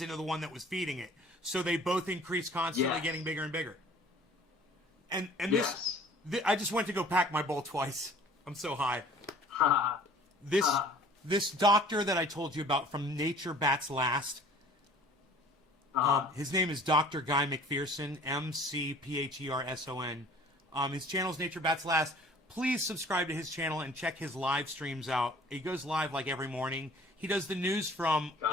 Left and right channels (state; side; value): normal; both; correlation 0.50